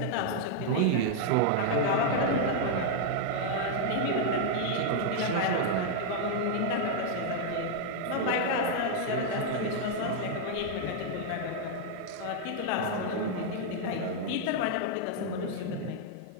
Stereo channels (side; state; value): both; different; correlation -0.01